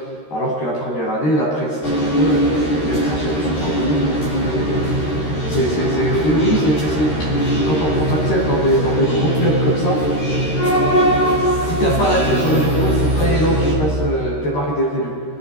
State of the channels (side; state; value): right; late; 13 ms